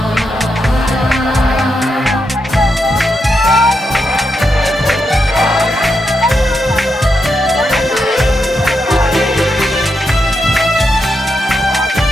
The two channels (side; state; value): both; normal; correlation 0.84